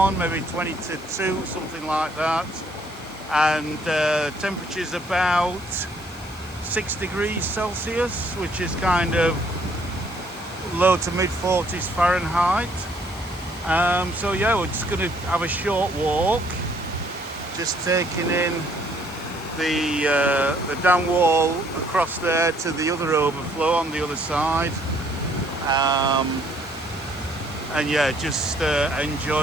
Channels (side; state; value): both; normal; correlation 0.65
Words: maybe 20 to 2, something like that, and temperature's about 6 degrees Celsius, which is kind of low to mid 40s Fahrenheit. So yeah, we're just going to have a short walk, just taking in the dam wall across there to the other overflow on the other side, and yeah, just